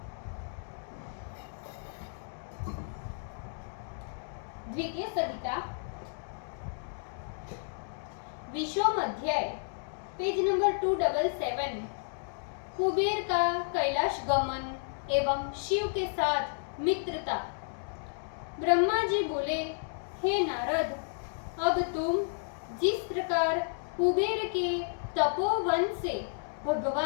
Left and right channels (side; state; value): right; silent; digital silence